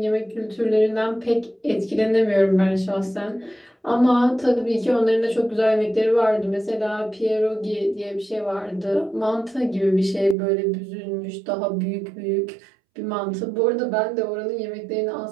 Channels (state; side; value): drops out; left; at 10.4 s